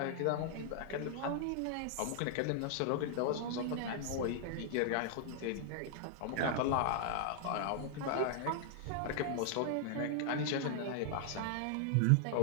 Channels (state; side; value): different; both; correlation 0.00